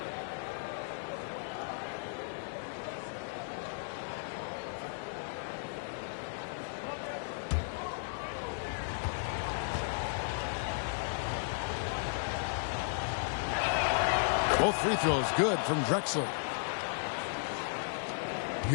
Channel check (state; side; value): silent; right; digital silence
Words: Both free throws good from Drexler.